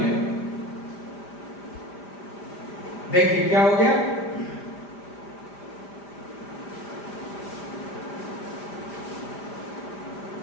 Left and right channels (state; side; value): late; right; 5.0 ms